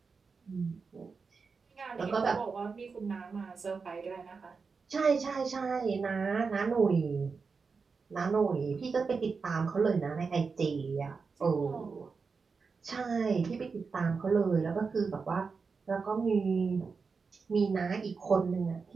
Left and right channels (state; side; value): quieter; left; 4.9 dB